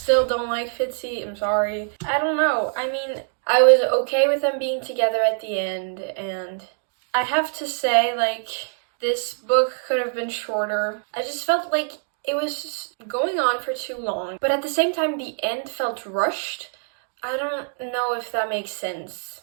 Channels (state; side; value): silent; left; 63 dB below the other